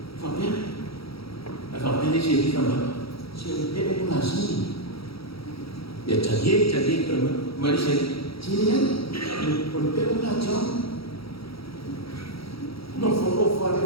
Fabian, Fabian ni siapa kamu? Siapa yang mengasih? Ya jadi kamu, mari saya, siapa? Orang yang mengajar, no follow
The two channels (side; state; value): right; late; 0.75 ms